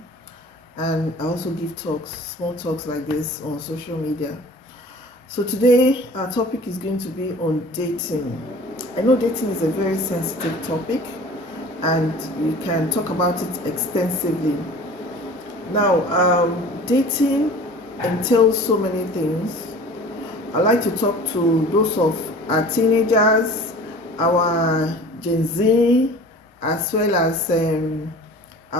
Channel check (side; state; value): both; normal; correlation 0.42